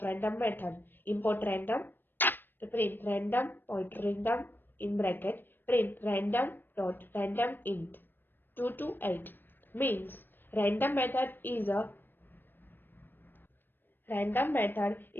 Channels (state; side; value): late; right; 0.094 ms